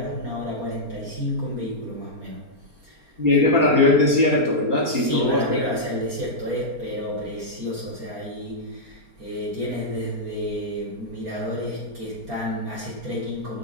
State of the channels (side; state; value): left; late; 4.3 ms